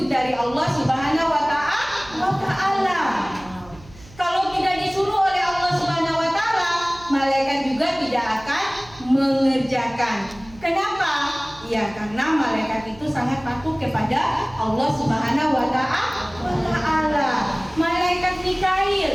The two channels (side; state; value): right; noise; hum, 22 dB below the sound